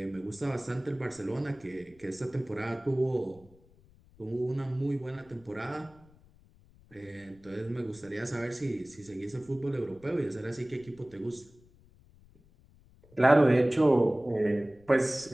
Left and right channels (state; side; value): noise; left; rumble, 27 dB below the sound